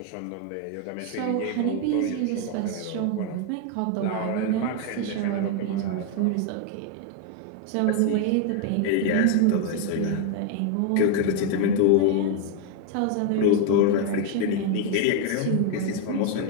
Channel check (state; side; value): different; both; correlation 0.01